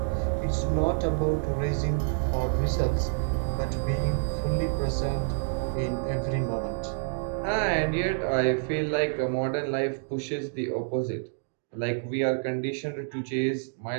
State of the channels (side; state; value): left; silent; digital silence